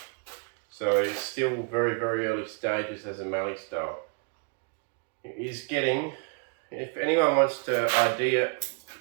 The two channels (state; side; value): quieter; left; 34.3 dB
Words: so it's still very early stages as a Mallee style. It is getting, if anyone wants to ID it,